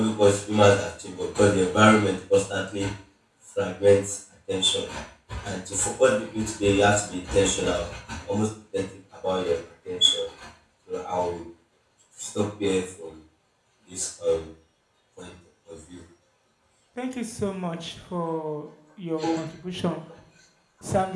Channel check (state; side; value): identical; both; correlation 1.00